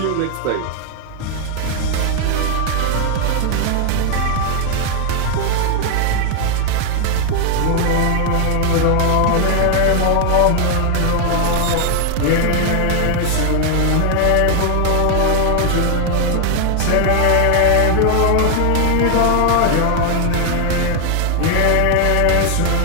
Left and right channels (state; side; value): different; both; correlation 0.00